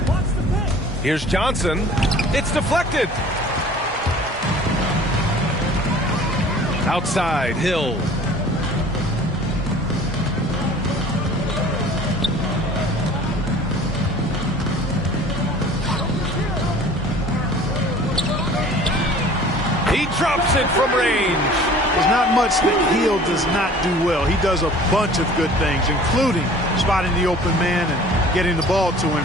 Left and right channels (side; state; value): both; normal; correlation 0.47